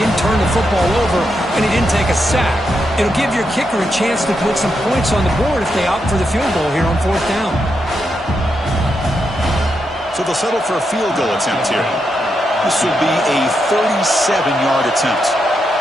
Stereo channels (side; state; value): both; normal; correlation 0.83